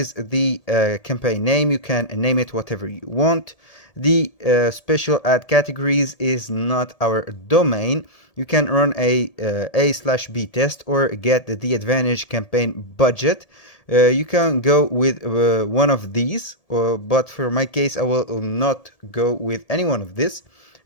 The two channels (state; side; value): late; right; 1.7 ms